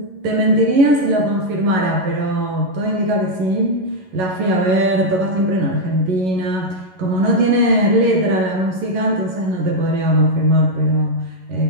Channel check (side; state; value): left; late; 11 ms